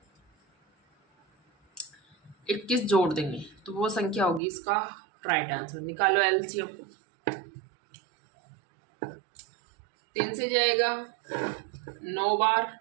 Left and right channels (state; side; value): drops out; left; at 4.4 s